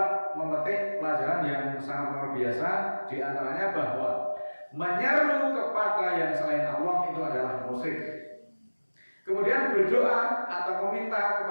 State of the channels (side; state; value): both; inverted; correlation -1.00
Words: memetik pelajaran yang sangat luar biasa. Di antaranya bahwa menyeru kepada yang selain Allah itu adalah musyrik. Kemudian berdoa atau meminta